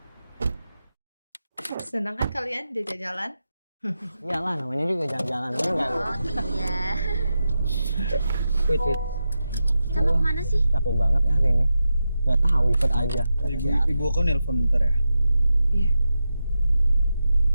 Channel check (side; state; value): both; inverted; correlation -0.89